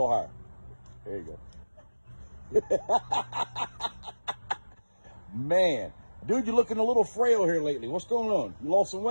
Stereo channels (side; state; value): both; inverted; correlation -1.00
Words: higher. There you go. Man, dude, you're looking a little frail here lately. What's going on? You lost some